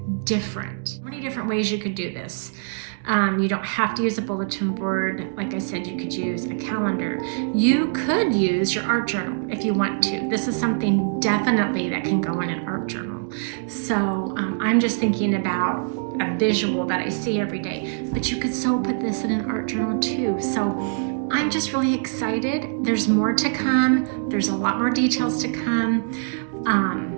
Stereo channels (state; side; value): silent; left; digital silence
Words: different. Many different ways you could do this. You don't have to use a bulletin board. Like I said, you could use a calendar. You could use your art journal if you want to. This is something definitely that can go in an art journal. So I'm just thinking about a visual that I see every day, but you could so put this in an art journal too. So I'm just really excited. There's more to come. There's a lot more details to come.